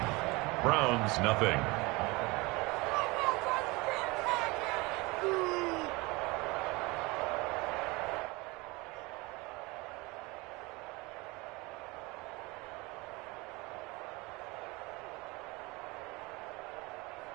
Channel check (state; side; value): quieter; left; 24.4 dB